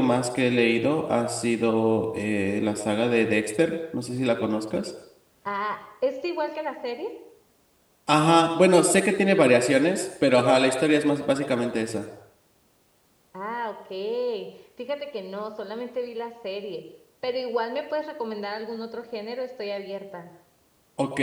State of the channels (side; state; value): both; identical; correlation 1.00